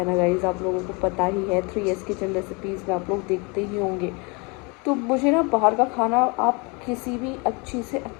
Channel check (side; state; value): right; quieter; 29.9 dB